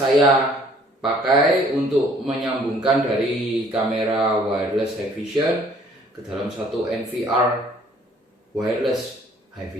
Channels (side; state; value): both; normal; correlation 0.58